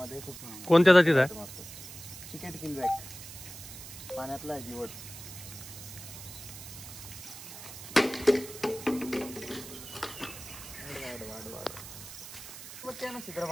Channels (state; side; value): noise; right; hiss, 13 dB below the sound